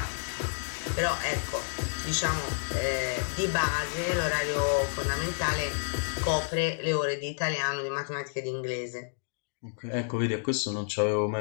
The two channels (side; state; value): right; silent; digital silence